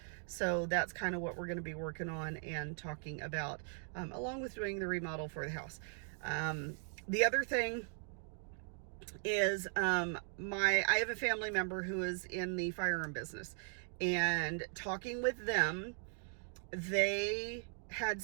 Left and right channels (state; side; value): silent; left; 52 dB below the other